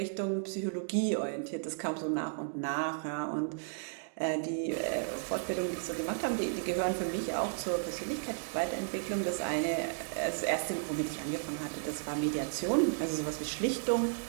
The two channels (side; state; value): left; silent; digital silence